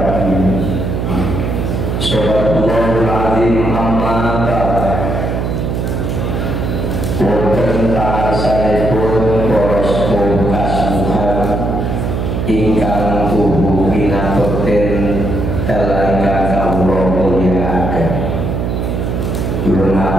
Subhanallahul azim. Amma ba'd. Wonten ta'asanipun para sepuh kasuhan ingkang tubuh pinatoten dalam kawula mulyakaken. Kula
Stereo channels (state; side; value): noise; right; hum, 1 dB below the sound